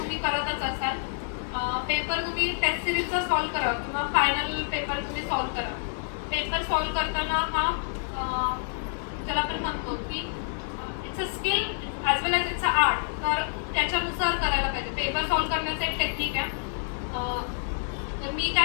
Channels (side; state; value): right; silent; 59 dB below the other